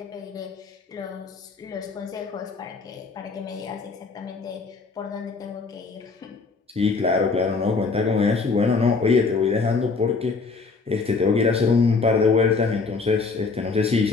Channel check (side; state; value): right; quieter; 4.4 dB